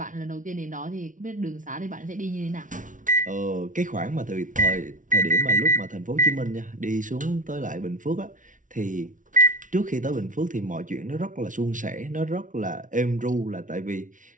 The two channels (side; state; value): left; late; 0.38 ms